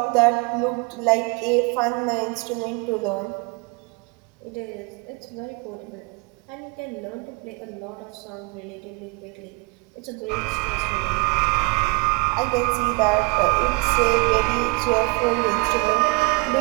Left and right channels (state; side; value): quieter; left; 28.6 dB